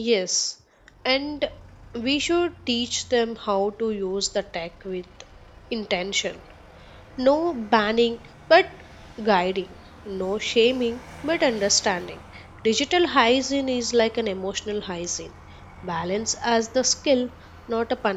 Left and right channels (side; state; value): both; identical; correlation 1.00